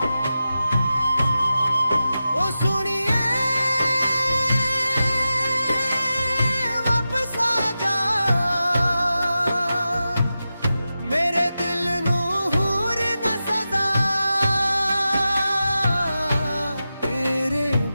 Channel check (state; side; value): inverted; both; correlation -0.92